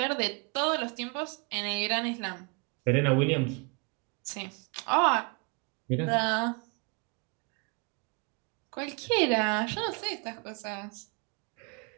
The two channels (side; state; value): left; quieter; 33.6 dB